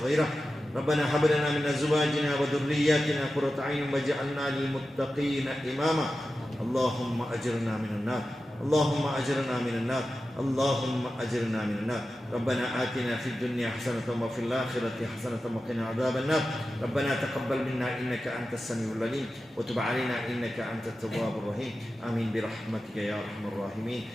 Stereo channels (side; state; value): both; normal; correlation 0.93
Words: ربنا هب لنا من أزواجنا وذرياتنا قرة أعين واجعلنا للمتقين إماما. اللهم أجرنا من النار، اللهم أجرنا من النار، اللهم أجرنا من النار. ربنا آتنا في الدنيا حسنة وفي الآخرة حسنة وقنا عذاب النار. ربنا تقبل منا إنك أنت السميع العليم وتب علينا إنك أنت التواب الرحيم. آمين برحمتك يا أرحم الراحمين.